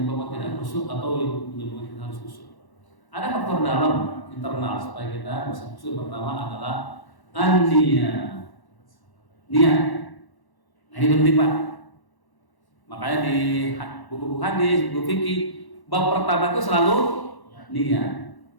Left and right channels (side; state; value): right; late; 1.1 ms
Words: tidak khusyuk atau yang menyebabkan kita harus khusyuk. Ada faktor dalam internal supaya kita bisa khusyuk. Pertama adalah niat. Nah ini penting Pak. Makanya di buku-buku hadis, buku fikih, bab pertama itu selalu niat.